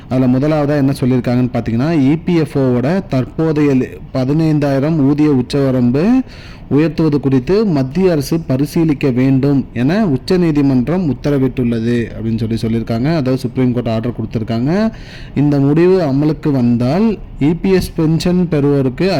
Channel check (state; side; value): identical; both; correlation 1.00